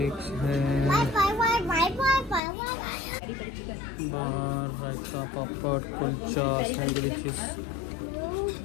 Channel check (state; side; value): drops out; right; at 2.4 s